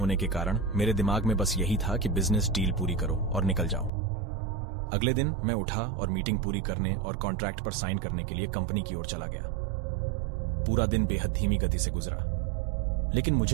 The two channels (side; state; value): left; drops out; at 3.9 s